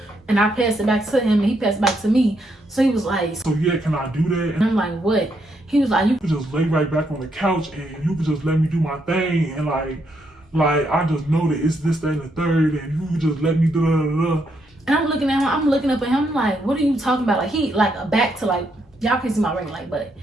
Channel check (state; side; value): normal; both; correlation 0.77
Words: and I passed it back to him, and he passed it back to me. So he was like, "So yeah, can I do that?" And I'm like, "What?" He was like, "You could just lay right back on the couch, and you could just let me do my thing, and like I just know that it's this, that, and the third, and you could just let me do da." And I'm looking at him, I'm looking up at him, like, what are you talking about? Like, he, like, a back to, like, y'all can see my ring light, but